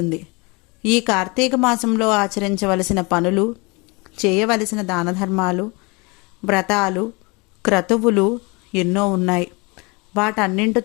ఈ కార్తీక మాసంలో ఆచరించవలసిన పనులు, చేయవలసిన దానధర్మాలు, వ్రతాలు, క్రతువులు ఎన్నో ఉన్నాయి.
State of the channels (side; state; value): right; quieter; 28.0 dB